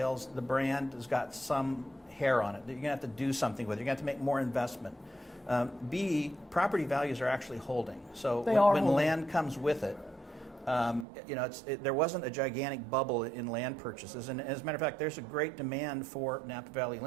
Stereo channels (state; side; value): drops out; left; at 11.1 s